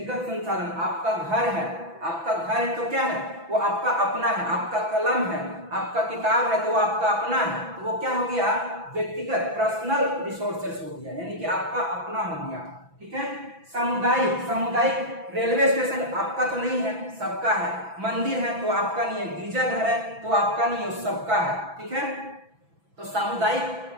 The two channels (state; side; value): late; left; 6.0 ms